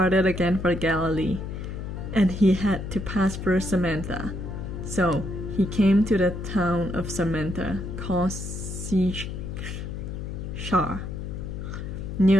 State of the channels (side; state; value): left; noise; hum, 6 dB below the sound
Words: again for Galilee, and he had to pass through Samaria. So he came to the town of Samaria called Sychar,